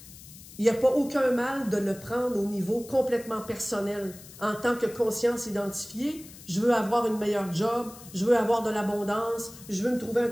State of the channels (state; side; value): noise; left; hiss, 18 dB below the sound